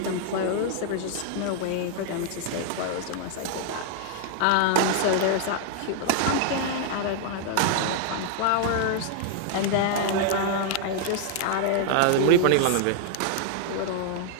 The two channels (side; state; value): both; different; correlation 0.00